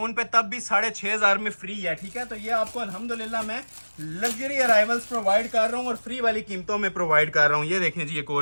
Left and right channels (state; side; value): inverted; both; correlation -1.00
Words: पे तब भी 6,500 में फ्री है, ठीक है। तो ये आपको अल्हम्दुलिल्लाह मैं लग्जरी अराइवल्स प्रोवाइड कर रहा हूँ और फ्री वाली कीमतों में प्रोवाइड कर रहा हूँ। ये देखें जी एक